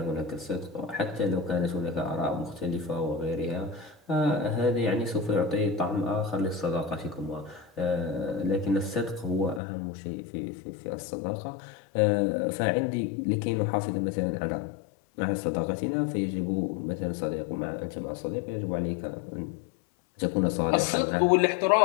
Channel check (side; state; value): right; drops out; at 9.6 s